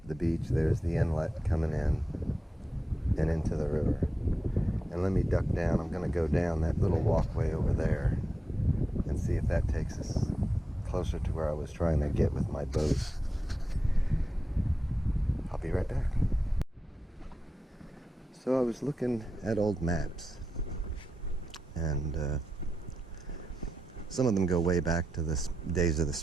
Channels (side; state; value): both; normal; correlation 0.89